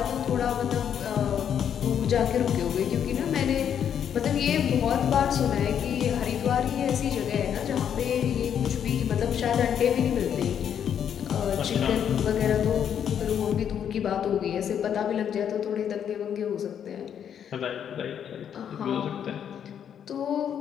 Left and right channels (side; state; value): right; quieter; 8.7 dB